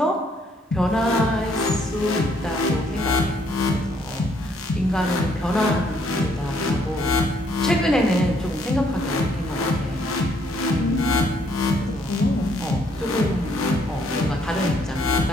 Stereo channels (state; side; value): normal; both; correlation 0.68